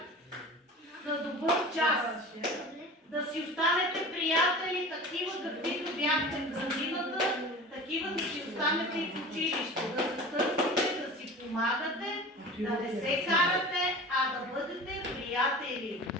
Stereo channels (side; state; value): both; normal; correlation 0.37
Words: на добър час, да си останете приятели, такива каквито бяхте в градината, такива да си останете и в училище, да се търсите, да си помагате, да не се карате, а да бъдете приятели.